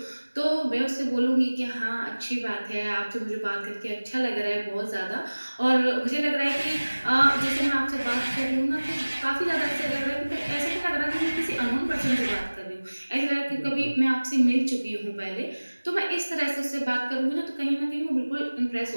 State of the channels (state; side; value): inverted; both; correlation -1.00